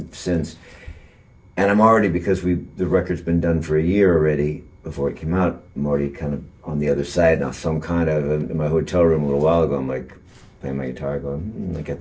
since. And I'm already, because the record's been done for a year already. Before it came out, I'm already kind of on the other side now. So I'm kind of in my hotel room a little while ago. I'm like playing my guitar, going, I got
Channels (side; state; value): both; identical; correlation 1.00